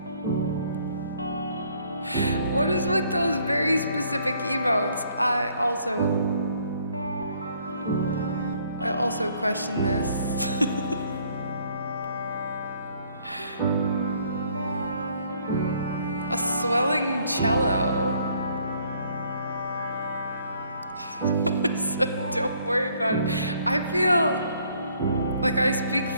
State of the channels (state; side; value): inverted; both; correlation -0.64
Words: what is with those very specific emotes? I also question this. A swelling cello. So don't worry about it. I feel like I speak